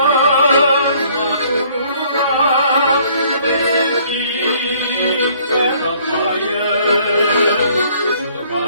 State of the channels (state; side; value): inverted; both; correlation -0.60